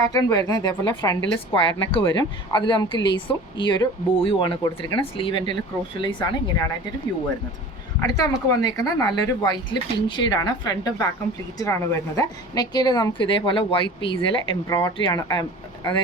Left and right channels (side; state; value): both; normal; correlation 0.40